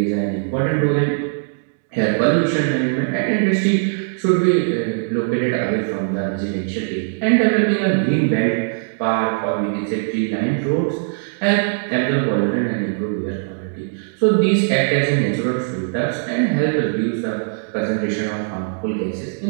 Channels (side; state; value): left; silent; digital silence